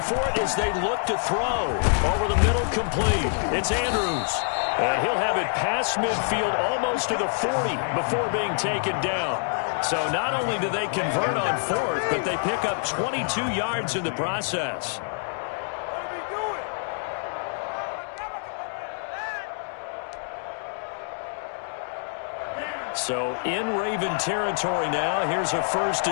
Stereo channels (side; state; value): right; silent; digital silence